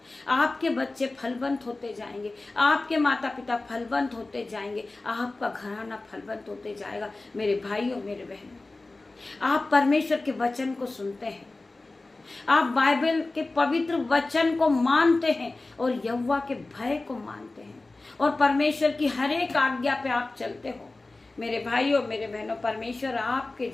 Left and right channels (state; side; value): quieter; right; 3.2 dB